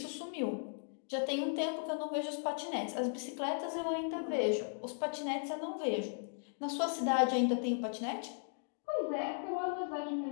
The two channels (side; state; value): right; silent; digital silence